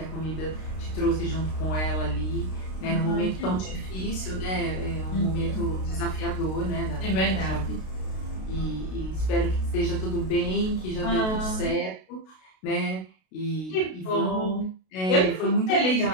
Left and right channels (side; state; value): right; late; 32 ms